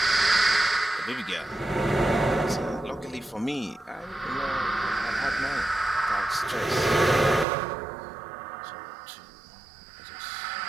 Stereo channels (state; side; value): drops out; left; at 7.5 s